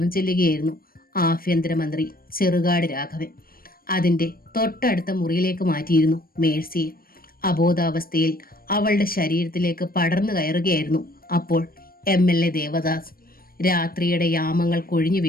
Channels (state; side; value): late; right; 0.43 ms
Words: ചെല്ലുകയായിരുന്നു ആഭ്യന്തരമന്ത്രി ചെറുകാട് രാഘവൻ. അതിന്റെ തൊട്ടടുത്ത മുറിയിലേക്ക് മാറ്റിയിരുന്നു മേഴ്സിയെ. അബോധാവസ്ഥയിൽ അവളുടെ ശരീരത്തിലേക്ക് പടർന്നു കയറുകയായിരുന്നു അപ്പോൾ MLA ദേവദാസ്. രാത്രിയുടെ യാമങ്ങൾ കൊഴിഞ്ഞു